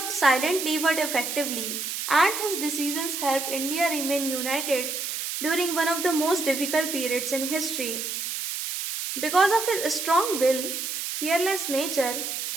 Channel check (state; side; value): noise; right; hiss, 4 dB below the sound